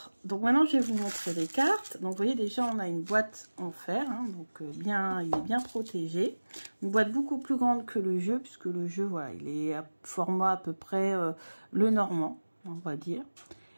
donc maintenant je vais vous montrer les cartes. Donc vous voyez déjà on a une boîte en fer, donc il est bien protégé. Une boîte beaucoup plus grande que le jeu, puisque le jeu il est à format à peu près le normand, on va dire.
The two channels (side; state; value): both; inverted; correlation -1.00